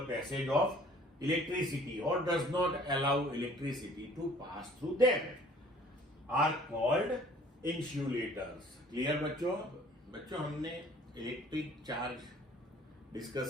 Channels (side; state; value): both; normal; correlation 0.54